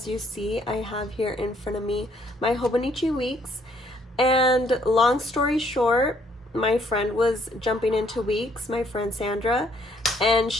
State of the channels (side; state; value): both; normal; correlation 0.67